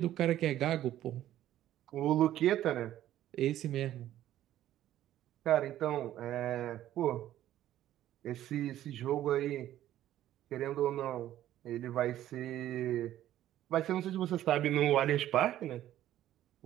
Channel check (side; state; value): left; quieter; 12.8 dB